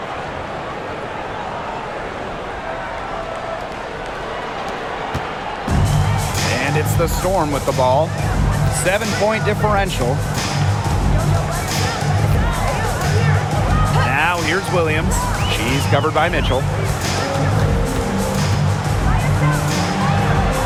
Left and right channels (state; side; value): identical; both; correlation 1.00